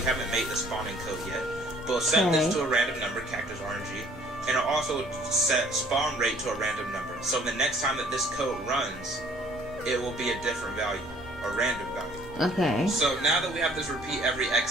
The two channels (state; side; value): normal; both; correlation 0.57